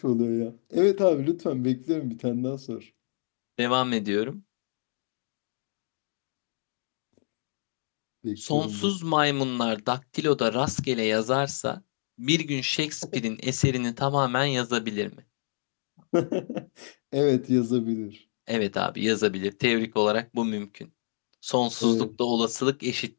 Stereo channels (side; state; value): right; silent; digital silence